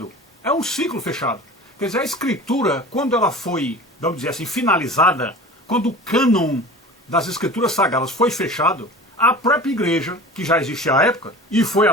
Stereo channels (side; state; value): both; normal; correlation 0.37